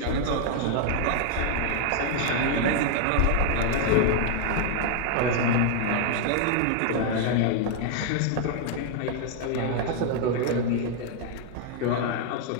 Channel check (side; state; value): both; different; correlation 0.00